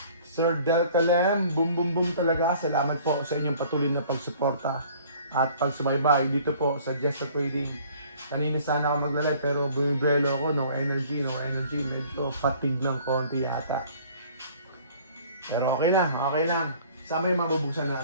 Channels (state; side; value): inverted; both; correlation -0.53